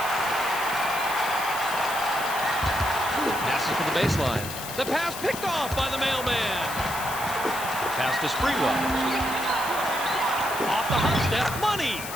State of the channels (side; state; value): left; noise; hiss, 9 dB below the sound